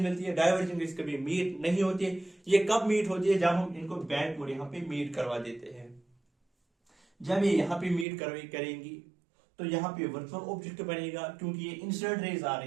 मिलती है। डाइवर्जिंग रेज कभी मीट नहीं होती है। ये कब मीट होती है, जब हम इनको बैकवर्ड यहाँ पे मीट करवा देते हैं। जब ये यहाँ पे मीट करेंगी तो यहाँ पे वर्चुअल ऑब्जेक्ट बनेगा, क्योंकि ये इंसिडेंट रेज आ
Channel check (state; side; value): drops out; left; at 8.1 s